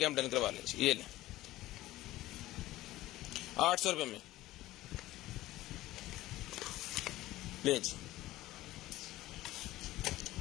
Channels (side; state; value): right; quieter; 16.4 dB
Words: डन करवा लें। ये लें 800 रुपये में ले जी।